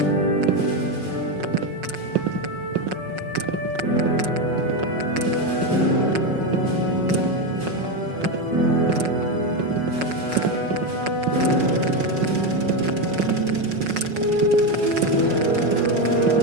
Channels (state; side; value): late; left; 5.4 ms